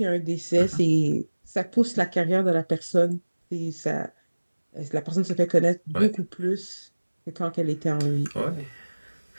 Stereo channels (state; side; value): inverted; both; correlation -1.00